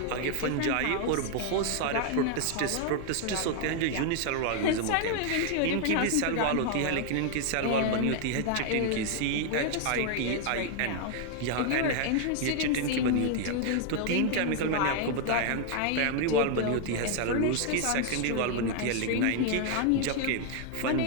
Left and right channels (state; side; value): different; both; correlation 0.00